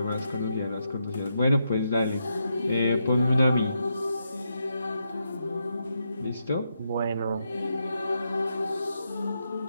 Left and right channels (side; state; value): both; inverted; correlation -0.83